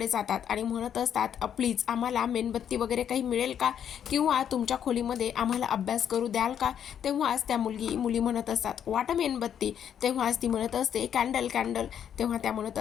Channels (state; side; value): quieter; right; 9.0 dB